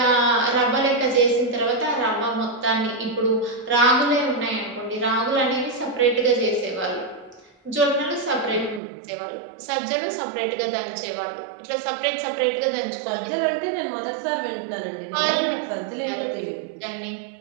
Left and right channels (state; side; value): drops out; left; at 8.8 s